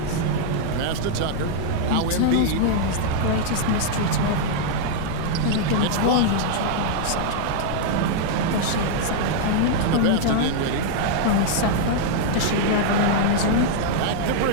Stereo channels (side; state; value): both; different; correlation -0.01